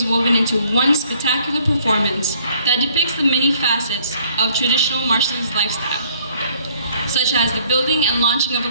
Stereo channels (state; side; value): inverted; both; correlation -0.61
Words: woven into one spectacular performance that depicts the many facets of traditional Marshallese lifestyle, such as the building and launching of